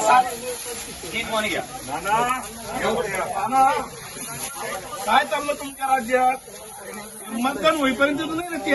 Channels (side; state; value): both; identical; correlation 1.00